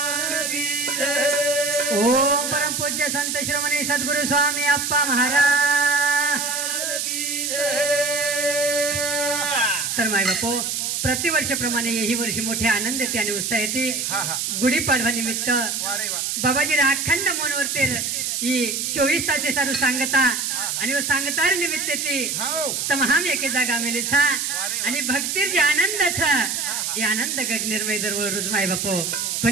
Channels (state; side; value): noise; right; hiss, 1 dB below the sound